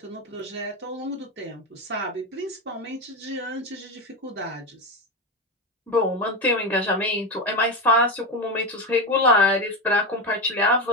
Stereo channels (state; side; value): normal; both; correlation 0.16